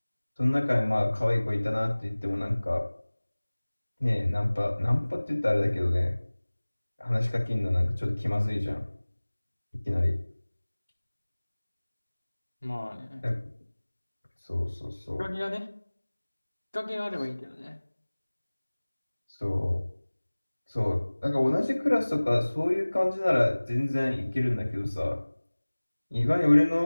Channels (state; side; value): inverted; both; correlation -1.00